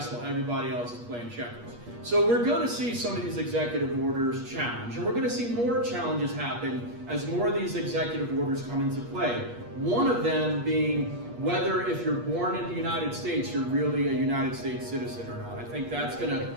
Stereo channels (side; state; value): left; late; 8.4 ms